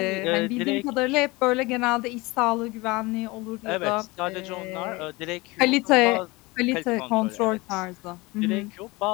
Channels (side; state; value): right; quieter; 23.4 dB